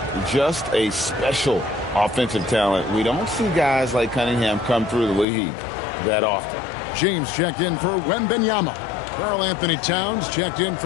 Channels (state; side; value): drops out; right; at 5.2 s